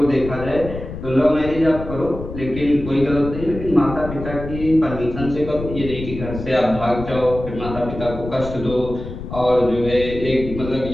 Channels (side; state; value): left; noise; rumble, 9 dB below the sound